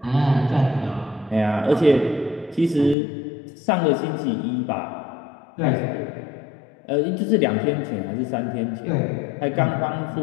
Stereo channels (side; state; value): right; drops out; at 3.0 s